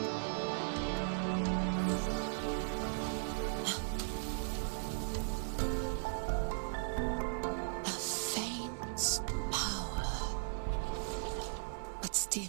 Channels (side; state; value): left; silent; digital silence